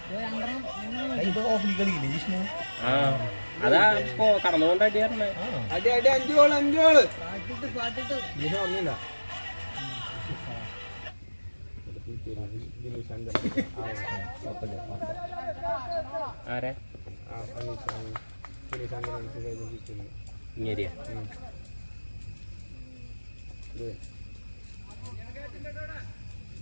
ഓഫ്ലി കളിയില്ലേ ജിഷ്ണു അതാ ഇപ്പൊ കടന്നുകൊണ്ട് അടിയായിരുന്നേ അടി അടി 5 ഗോള് 5 ഗോള് ഒന്നുമില്ല ആരെ ഇങ്ങേരിയ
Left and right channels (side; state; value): both; inverted; correlation -1.00